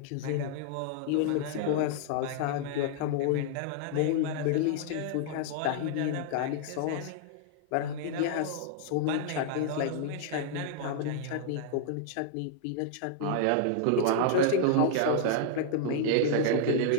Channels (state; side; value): different; both; correlation -0.01